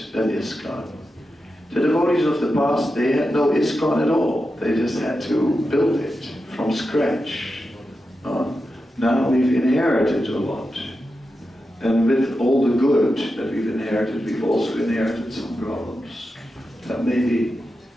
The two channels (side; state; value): both; normal; correlation 0.90